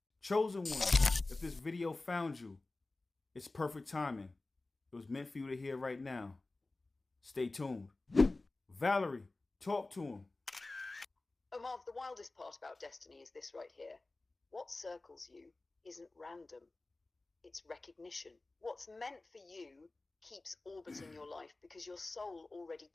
Chosen one, if this video found you, it's perfect timing. It was meant for you to hear right now. Stay tuned. Valerie, talk to him. Omar, the wildest part about destiny is this right here. What circles you isn't random. It's recognition. What's meant for you keeps orbiting your life because your soul already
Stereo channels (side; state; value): right; quieter; 3.1 dB